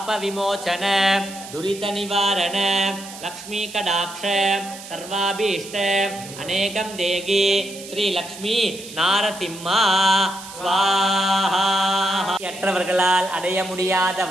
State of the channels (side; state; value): right; noise; hiss, 14 dB below the sound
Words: दुरितनिवारण लक्ष्मी कटाक्ष सर्वाभीष्ट अनेकं देहि श्रीलक्ष्मी नारसिंह स्वाहा। அற்றவர்களால் அடைய